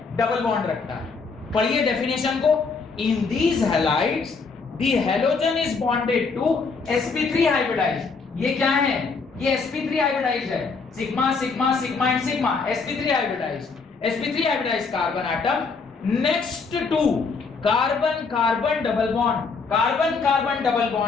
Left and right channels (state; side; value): quieter; right; 4.7 dB